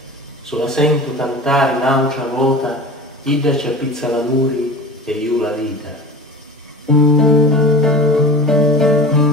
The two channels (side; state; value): both; normal; correlation 0.35